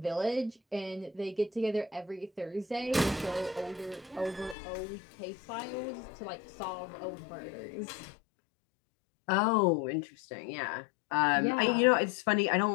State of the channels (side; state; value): right; drops out; at 4.5 s